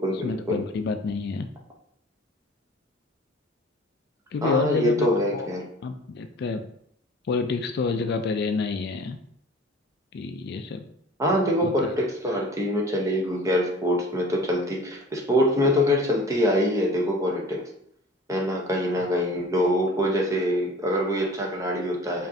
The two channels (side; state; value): both; normal; correlation 0.44